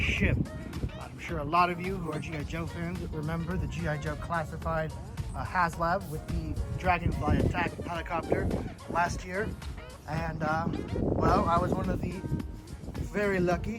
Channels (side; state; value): both; identical; correlation 1.00